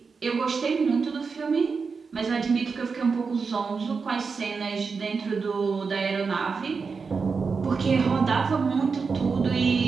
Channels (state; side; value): quieter; left; 5.1 dB